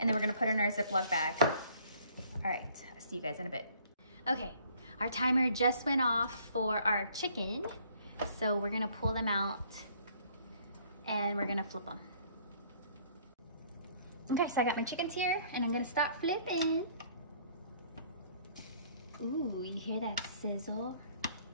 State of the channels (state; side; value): inverted; both; correlation -0.60